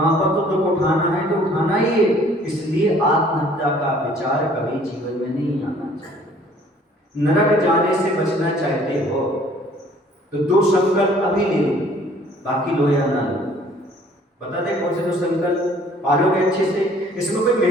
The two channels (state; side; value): normal; both; correlation 0.56